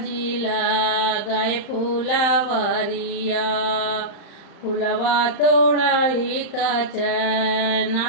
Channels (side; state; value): right; late; 35 ms